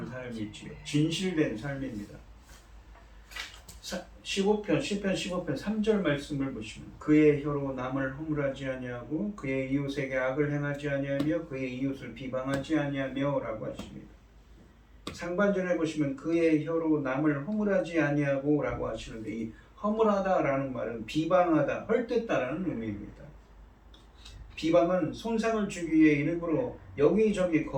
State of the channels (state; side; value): identical; both; correlation 1.00